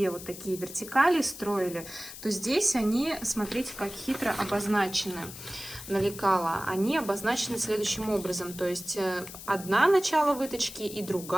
вот такие вертикали строили, то здесь они, смотрите, как хитро обозначены на лекало. Они обозначены следующим образом. То есть одна начало выточки и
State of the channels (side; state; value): left; noise; hiss, 13 dB below the sound